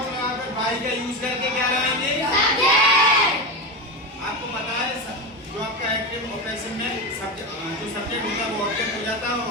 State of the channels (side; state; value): both; normal; correlation 0.18